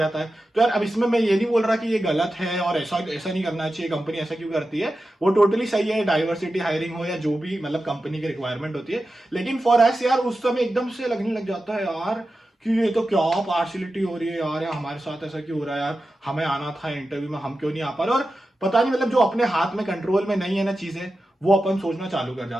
है। तो यार अब इसमें मैं ये नहीं बोल रहा कि ये गलत है और ऐसा ऐसा नहीं करना चाहिए, कंपनी ऐसा क्यों करती है, वो टोटली सही है, डाइवर्सिटी हायरिंग हो या जो भी मतलब कंपनी की रिक्वायरमेंट होती है। लेकिन फॉर एस यार उस समय एकदम से लगने लग जाता है यार कि ये तो क्या पार्शियलिटी हो रही है यार हमारे साथ ऐसा क्यों हो रहा है यार, हमें आना था इंटरव्यू में, हम क्यों नहीं आ पा रहे। और पता नहीं मतलब जो अपने हाथ में कंट्रोल में नहीं है ना चीजें, वो अपन सोचना चालू कर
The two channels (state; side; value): normal; both; correlation 0.92